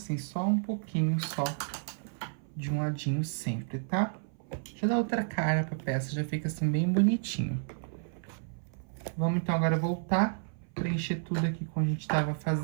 só um pouquinho só de um ladinho sempre, tá? Já dá outra cara pra peça, já fica assim bem bonitinho. Vamos então agora voltar, preencher tudo aqui como a gente tava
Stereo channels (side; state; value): left; silent; 56 dB below the other